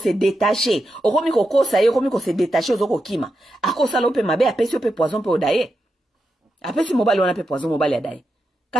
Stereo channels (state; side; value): normal; both; correlation 0.87